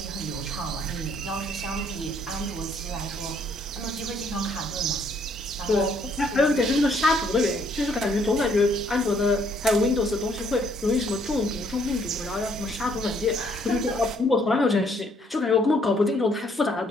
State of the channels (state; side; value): normal; both; correlation 0.66